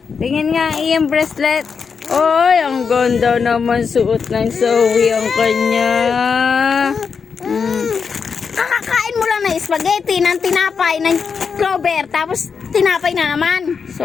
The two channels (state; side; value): quieter; right; 5.8 dB